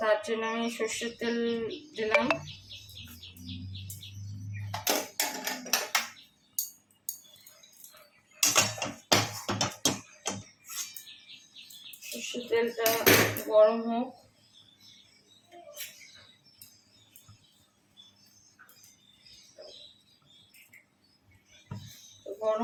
জন্য আমি সর্ষের তেল দিলাম। সর্ষের তেলটা গরম হোক।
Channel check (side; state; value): both; identical; correlation 1.00